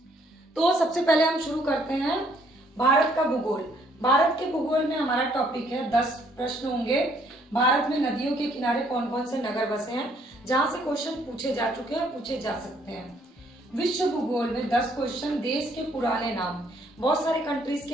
तो सबसे पहले हम शुरू करते हैं भारत का भूगोल। भारत के भूगोल में हमारा टॉपिक है 10 प्रश्न होंगे। भारत में नदियों के किनारे कौन कौन से नगर बसे हैं, जहां से क्वेश्चन पूछे जा चुके हैं, पूछे जा सकते हैं। विश्व भूगोल में 10 क्वेश्चन, देश के पुराने नाम, बहुत सारे कंट्रीज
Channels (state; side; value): normal; both; correlation 0.66